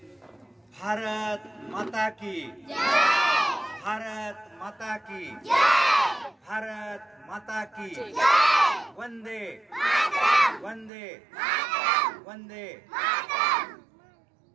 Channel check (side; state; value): left; drops out; at 10.9 s